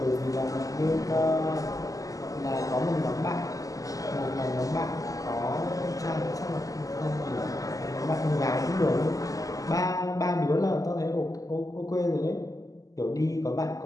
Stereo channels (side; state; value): right; late; 0.17 ms